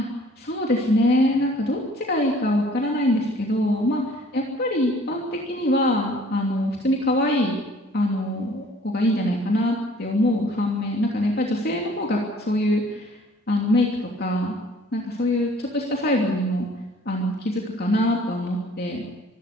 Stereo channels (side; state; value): both; normal; correlation 0.54